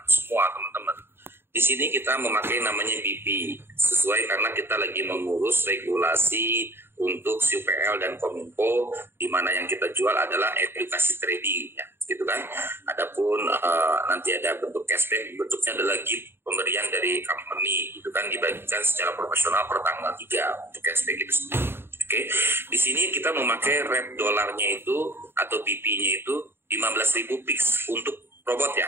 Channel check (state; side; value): late; left; 0.11 ms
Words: semua teman-teman, di sini kita memakai namanya BP sesuai karena kita lagi mengurus regulasi untuk UPL dan Kominfo, di mana yang kita jual adalah edukasi trading, ya, gitu kan. Adapun nanti ada bentuk cashback, bentuknya adalah gift pemberian dari company, gitu kan, dibagikan secara profesional per tanggal 3 untuk cashback itu sendiri. Oke, di sini kita memakai rate dolarnya itu atau BP-nya itu 15.000 pix untuk robot ya.